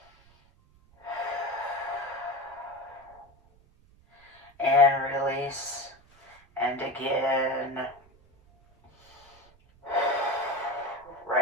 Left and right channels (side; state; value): right; noise; rumble, 29 dB below the sound